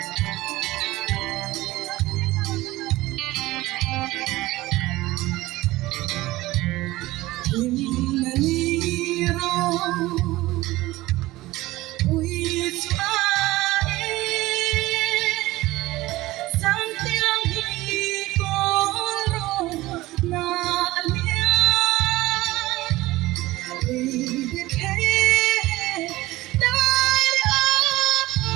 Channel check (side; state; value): left; quieter; 18.3 dB